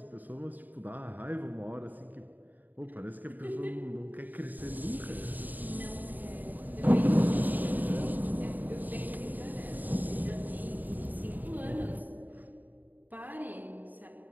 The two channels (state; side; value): late; left; 0.085 ms